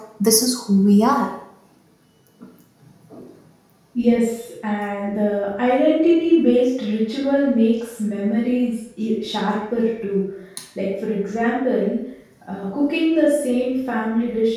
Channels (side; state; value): both; identical; correlation 1.00